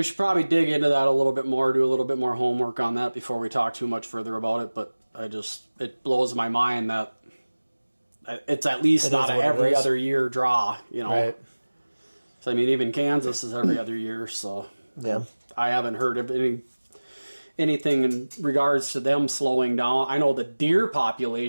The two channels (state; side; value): inverted; both; correlation -1.00